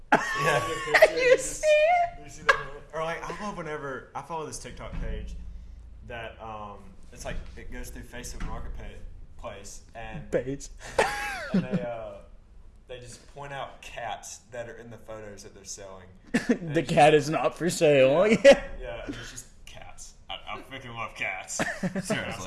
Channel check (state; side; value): identical; both; correlation 1.00